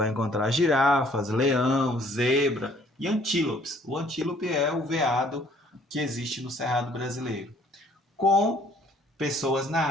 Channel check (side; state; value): both; normal; correlation 0.60